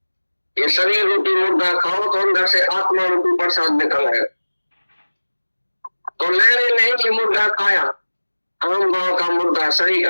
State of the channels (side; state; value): both; inverted; correlation -1.00